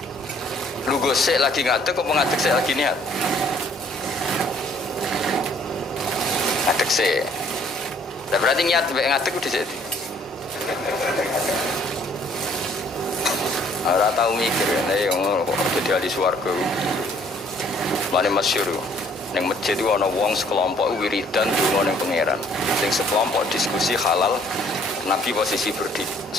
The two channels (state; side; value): normal; both; correlation 0.60